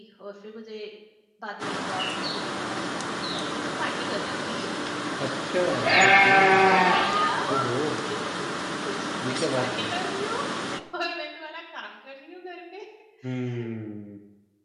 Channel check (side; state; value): both; identical; correlation 1.00